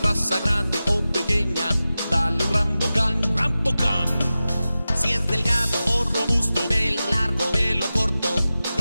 grande o pequeña, dale Rambocan, Rambocan. Si es delgado o robusto, pelo largo, pelo corto,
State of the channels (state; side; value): inverted; both; correlation -0.95